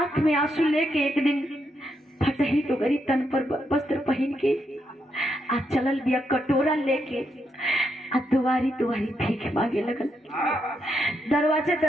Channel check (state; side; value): normal; both; correlation 0.80